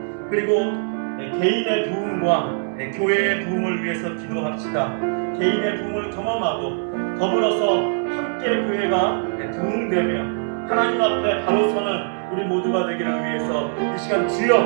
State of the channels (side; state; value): left; silent; 64 dB below the other